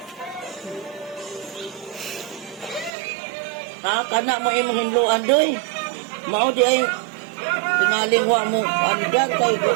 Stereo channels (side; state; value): left; drops out; at 2.9 s